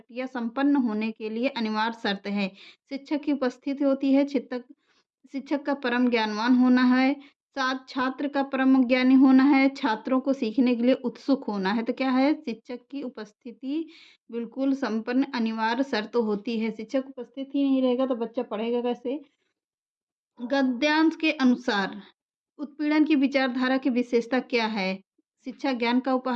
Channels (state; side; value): identical; both; correlation 1.00